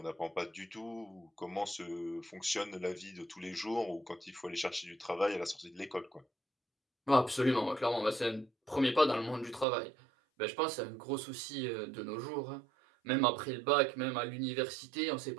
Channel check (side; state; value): left; drops out; at 9.7 s